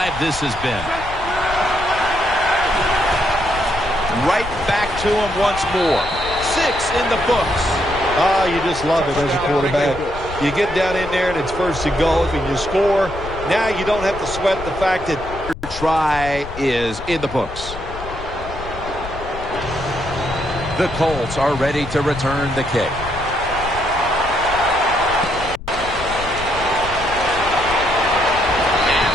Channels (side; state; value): left; noise; rumble, 11 dB below the sound